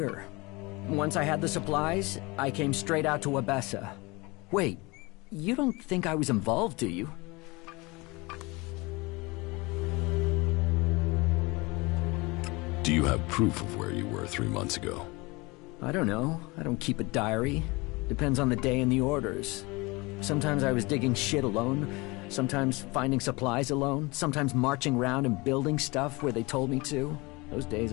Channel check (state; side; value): quieter; right; 24.9 dB